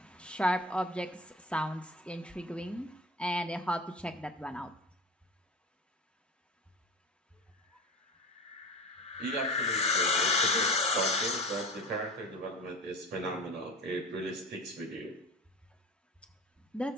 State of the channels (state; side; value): normal; both; correlation 0.32